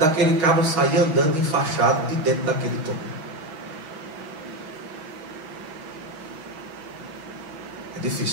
cabo sair andando enfaixado de dentro daquele túmulo? É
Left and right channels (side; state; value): left; late; 6.3 ms